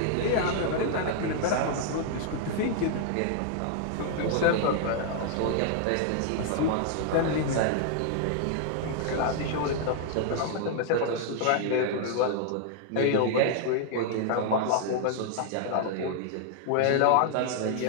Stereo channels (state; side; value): different; both; correlation 0.00